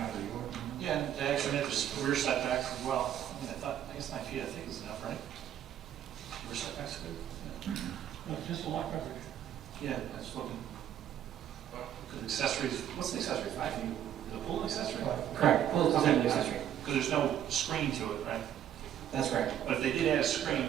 out of the ordinary. Yeah, and they actually met this rear setbacks as well. I guess 9 feet, I think is enough, right? Rear setbacks good? No, just a lot coverage. Yeah, that's looking. Because accessories, what's the accessory, 5 feet? The pool accessory? Correct. Well, it's an accessory. Because there's no screen to it, right? That's correct. But if they did add a screen,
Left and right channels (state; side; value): quieter; left; 10.5 dB